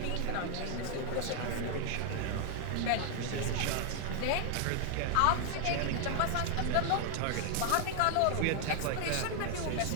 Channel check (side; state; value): both; different; correlation 0.00